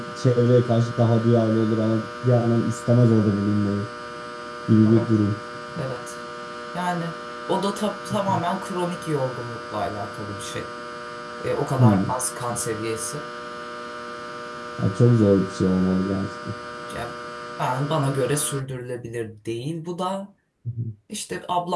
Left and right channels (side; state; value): both; identical; correlation 1.00